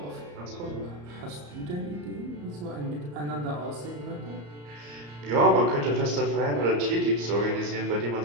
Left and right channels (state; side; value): late; left; 34 ms